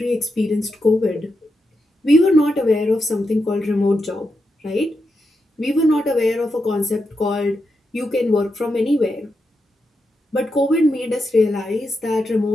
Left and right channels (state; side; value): normal; both; correlation 0.85